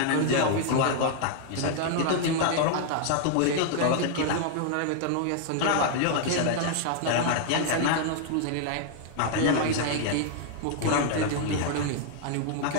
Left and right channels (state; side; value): different; both; correlation 0.00